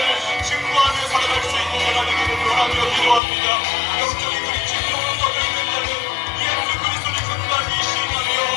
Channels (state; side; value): drops out; right; at 3.2 s